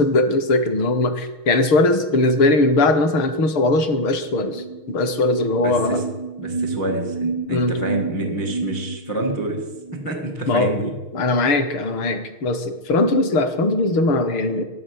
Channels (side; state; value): right; late; 6.4 ms